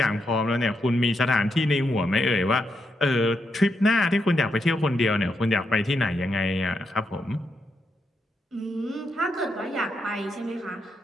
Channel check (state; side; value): normal; both; correlation 0.82